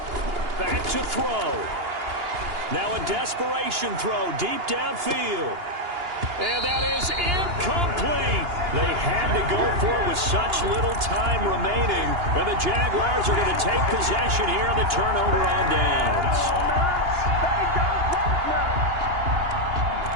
Back to throw. Now a desperation throw deep downfield. And that is incomplete. They had to go for it with such little time remaining. And the Jaguars are going to take possession here on the turnover on downs.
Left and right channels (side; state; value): left; late; 2.9 ms